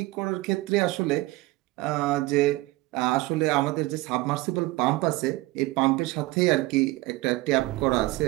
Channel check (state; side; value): quieter; left; 20.0 dB